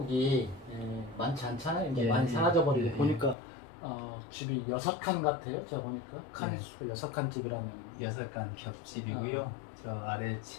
많지 않잖아요. 이제 많이 사라져버리고 보니까 집이 6칸 같아요. 제가 보니까 칸이 6칸 집이라면 6칸 겹집이고요. 저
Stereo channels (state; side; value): drops out; right; at 3.4 s